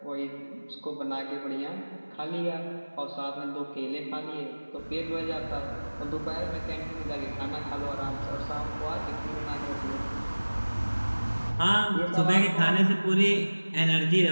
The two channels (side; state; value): both; inverted; correlation -1.00